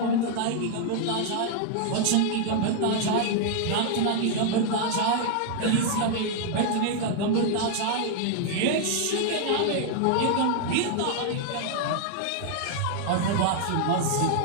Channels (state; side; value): different; both; correlation 0.00